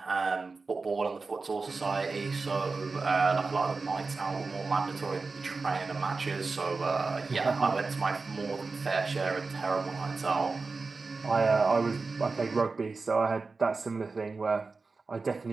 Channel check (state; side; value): quieter; left; 4.1 dB